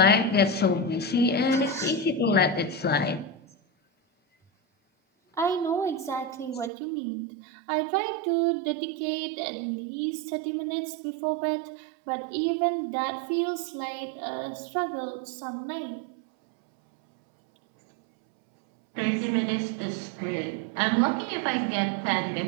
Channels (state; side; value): drops out; left; at 6.7 s